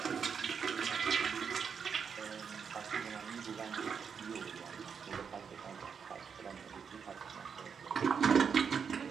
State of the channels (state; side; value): quieter; left; 6.6 dB